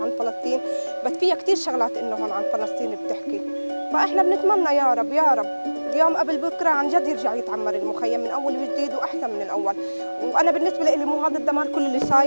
فلسطين، بس فيها كثير شغلات انه هون عن فلسطين بتحكي. فاحنا بنتمنى يا رب يا رب اليوم قبل بكره عن جد يرجع يتعمر المخيم من اول وجديد واحسن من الاول. وانا بالنسبه لي مو هذا الدمار كل اللي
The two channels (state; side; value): inverted; both; correlation -1.00